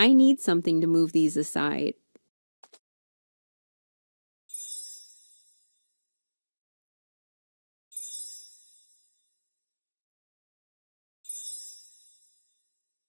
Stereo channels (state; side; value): inverted; both; correlation -1.00